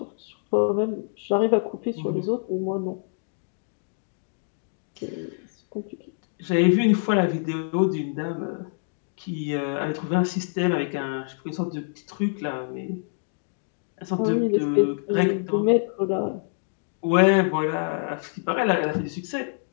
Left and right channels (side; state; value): right; silent; digital silence